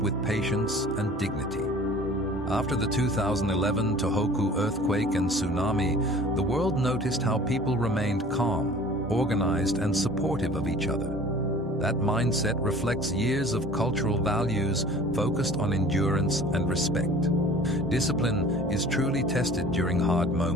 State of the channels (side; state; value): both; normal; correlation 0.46